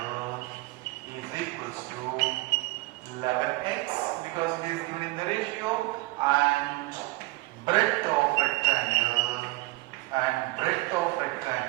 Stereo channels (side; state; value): left; quieter; 20.7 dB